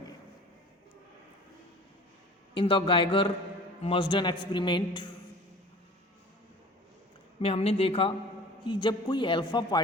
इन द गाइगर मर्जन एक्सपेरिमेंट में हमने देखा कि जब कोई अल्फा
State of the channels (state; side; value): normal; both; correlation 0.43